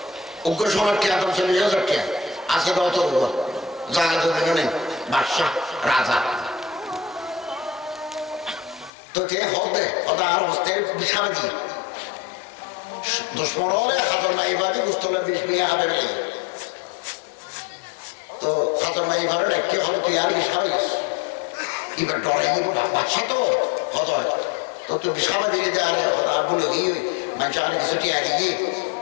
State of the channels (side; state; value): right; drops out; at 8.9 s